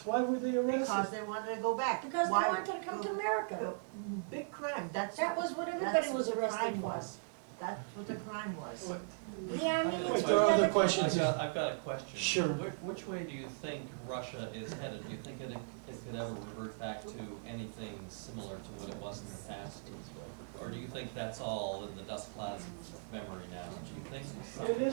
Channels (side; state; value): left; silent; digital silence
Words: Why were they Because arrested? they wanted to go back. Because they Why- wanted to come to America. Big crime. That was what everybody was arrested for. That's what the crime was. What- The Armenians Wait, were there are other never- questions. I've got a question. Sure. Which way do you think Russia is headed? Do you think it could ever revert back to anything similar to what it was in the past? Or do you think that's all in the dust clouds of memory now? Do you think something